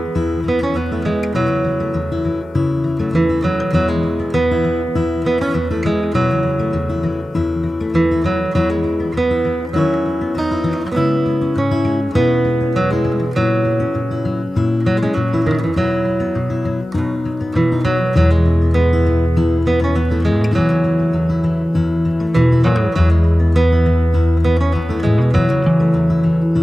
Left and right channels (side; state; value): both; normal; correlation 0.95